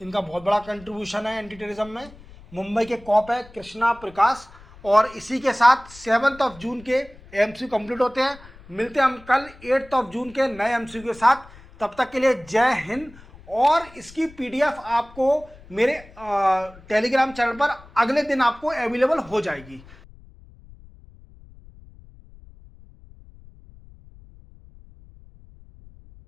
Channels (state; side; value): noise; left; rumble, 22 dB below the sound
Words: इनका बहुत बड़ा कंट्रीब्यूशन है एंटी टेररिज्म में। मुंबई के कॉप है कृष्णा प्रकाश। और इसी के साथ 7 जून के एमसीक्यू कंप्लीट होते हैं। मिलते हैं हम कल 8 जून के नए एमसीक्यू के साथ। तब तक के लिए जय हिंद। और इसकी पीडीएफ आपको मेरे टेलीग्राम चैनल पर अगले दिन आपको अवेलेबल हो जाएगी।